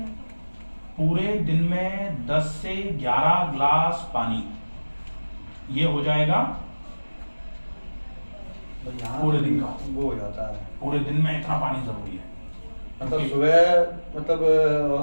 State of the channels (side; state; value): both; inverted; correlation -1.00